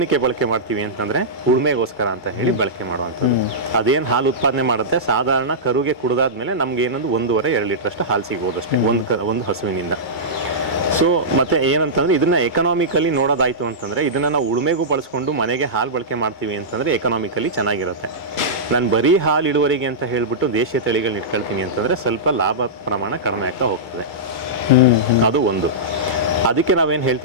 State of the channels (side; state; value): right; late; 2.3 ms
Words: ಬಳಕೆ ಮಾಡ್ತೀವಿ ಅಂತಂದ್ರೆ ಉಳುಮೆಗೋಸ್ಕರ ಅಂತ ಹೇಳಿ ಬಳಕೆ ಮಾಡುವಂಥದ್ದು. ಅದೇನು ಹಾಲು ಉತ್ಪಾದನೆ ಮಾಡುತ್ತೆ, ಸಾಧಾರಣ ಕರುಗೆ ಕುಡಿದಾದ್ಮೇಲೆ ನಮ್ಗೆ ಏನೊಂದು 1.5-2 ಲೀಟರ್ ಅಷ್ಟು ಹಾಲು ಸಿಗ್ಬೋದು ಅಷ್ಟೇ ಒಂದು ಹಸುವಿನಿಂದ. ಸೊ ಮತ್ತೆ ಏನಂತಂದ್ರೆ ಇದನ್ನ ಎಕನಾಮಿಕಲಿ ನೋಡೋದಾಯ್ತು ಅಂತಂದ್ರೆ ಇದನ್ನ ನಾವು ಉಳುಮೆಗೂ ಬಳಸ್ಕೊಂಡು ಮನೆಗೆ ಹಾಲು ಬಳಕೆ ಮಾಡ್ತೀವಿ ಅಂತಂದ್ರೆ ಎಕನಾಮಿಕಲಿ ಚೆನ್ನಾಗಿರುತ್ತೆ. ನಾನು ಬರೀ ಹಾಲು ಇಳುವರಿಗೆ ಅಂತ ಹೇಳ್ಬಿಟ್ಟು ದೇಶೀಯ ತಳಿಗಳನ್ನ ಇಟ್ಕೊಳ್ತೀನಿ ಅಂತಂದ್ರೆ ಸ್ವಲ್ಪ ಲಾಭ ಪ್ರಮಾಣ ಕಡಿಮೆ ಆಗ್ತಾ ಹೋಗ್ತದೆ. ಅದು ಒಂದು. ಅದಕ್ಕೆ ನಾವೇನು